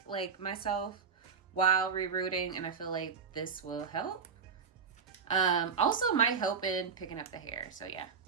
myself while rerouting, and I feel like this will help. Also might help in picking up the hair. So yeah,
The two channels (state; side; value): quieter; left; 5.9 dB